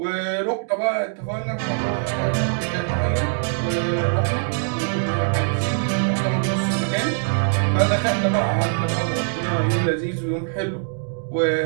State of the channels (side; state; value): left; silent; digital silence